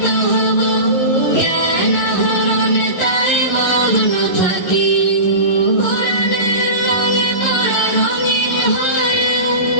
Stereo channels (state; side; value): late; right; 11 ms